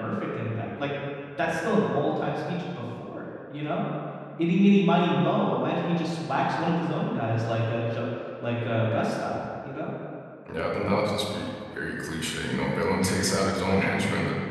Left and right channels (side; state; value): both; identical; correlation 1.00